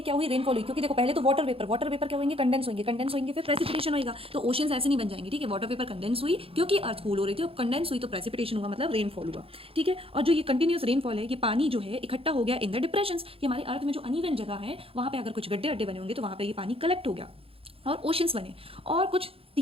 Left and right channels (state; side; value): late; left; 0.27 ms